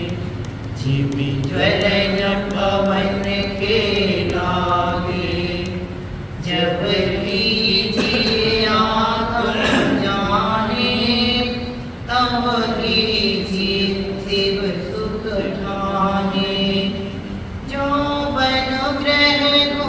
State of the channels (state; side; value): identical; both; correlation 1.00